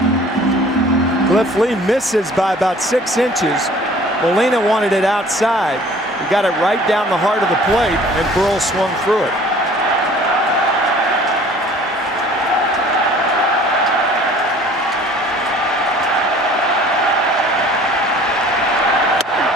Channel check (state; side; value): normal; both; correlation 0.51